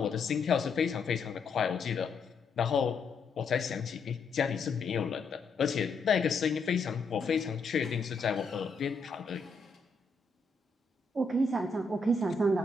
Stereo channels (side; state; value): right; quieter; 3.9 dB